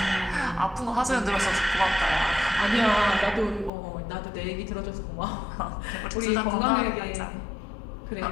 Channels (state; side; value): drops out; right; at 3.7 s